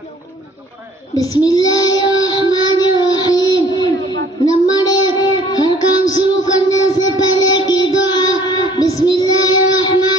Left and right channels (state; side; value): normal; both; correlation 0.55